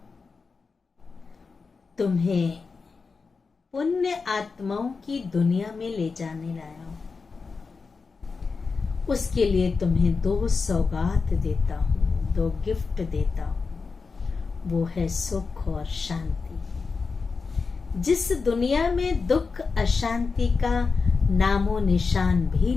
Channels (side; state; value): right; quieter; 4.7 dB